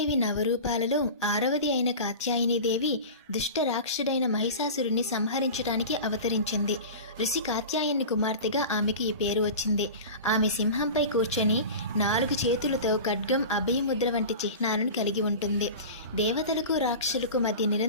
నవరూపాలలో 6వది అయిన కాత్యాయనీదేవి దుష్ట రాక్షసుడైన మహిషాసురుణ్ణి సంహరించడానికి అవతరించింది. ఋషి కాత్యాయని కుమార్తెగా ఆమెకు ఈ పేరు వచ్చింది. ఆమె సింహంపై కూర్చొని 4 చేతులతో ఖడ్గం, అభయముద్ర వంటి చిహ్నాలను కలిగి ఉంటుంది. దేవతలకు రాక్షసులకు మధ్య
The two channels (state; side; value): inverted; both; correlation -0.32